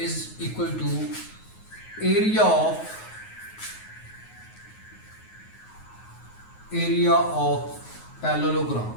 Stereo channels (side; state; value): right; late; 9.4 ms